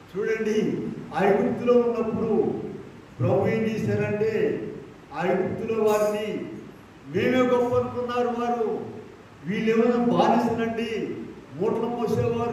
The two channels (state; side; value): identical; both; correlation 1.00